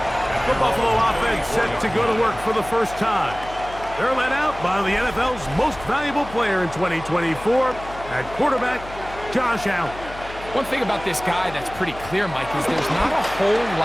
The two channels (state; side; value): noise; left; hum, 15 dB below the sound